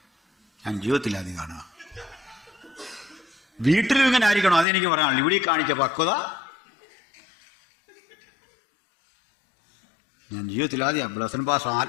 ഞാൻ ജീവിതത്തിലാദ്യം കാണുക. വീട്ടിലും ഇങ്ങനെ ആയിരിക്കണം, അതെനിക്ക് പറയാനുള്ളൂ. ഇവിടെ കാണിച്ച പക്വത ഞാൻ ജീവിതത്തിലാദ്യം ബ്ലസൻ പാസ്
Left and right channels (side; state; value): right; drops out; at 4.7 s